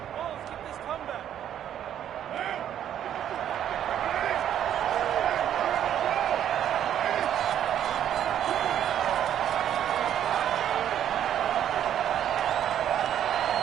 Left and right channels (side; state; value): left; quieter; 10.3 dB